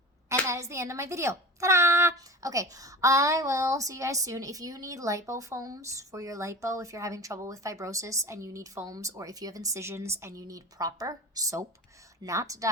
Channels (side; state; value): both; normal; correlation 0.34